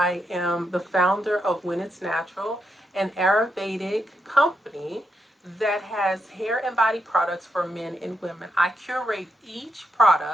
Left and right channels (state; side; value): normal; both; correlation 0.82